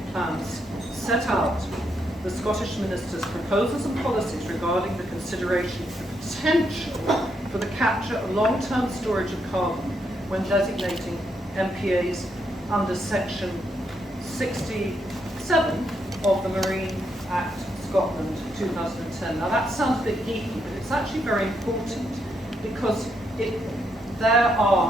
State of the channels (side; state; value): both; normal; correlation 0.78